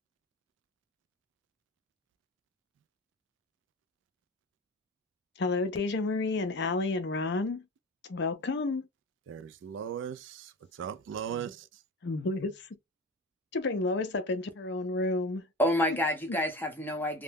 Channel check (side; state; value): both; normal; correlation 0.31